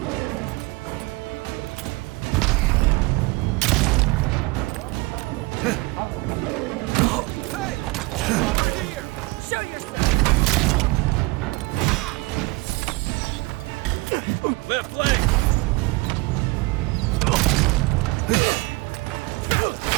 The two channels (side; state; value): left; quieter; 24.2 dB